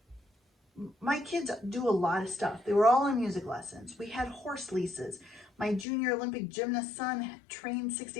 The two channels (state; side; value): drops out; right; at 5.9 s